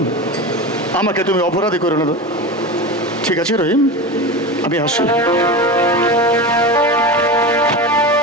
আমাকে তুমি অপরাধী করে নেবে। ঠিক আছে রহিম, আমি আসি।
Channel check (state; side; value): normal; both; correlation 0.25